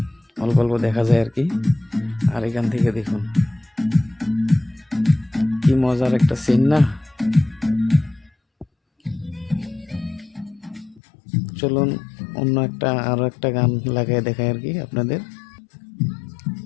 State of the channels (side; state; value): right; drops out; at 11.0 s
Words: অল্প অল্প দেখা যায় আর কি। আর এখান থেকে দেখুন কি মজার একটা সিন না। চলুন অন্য একটা আরো একটা গান লাগাই দেখাই আর কি আপনাদের।